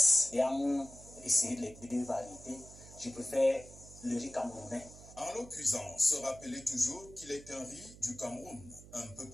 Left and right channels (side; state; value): right; noise; hum, 18 dB below the sound